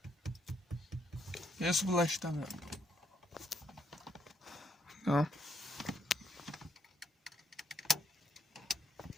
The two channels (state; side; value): normal; both; correlation 0.75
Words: Yes, bunlar işlemiyor. Ya.